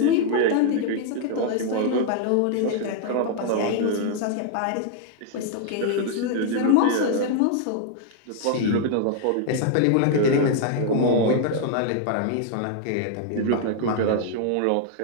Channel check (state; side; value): different; both; correlation 0.00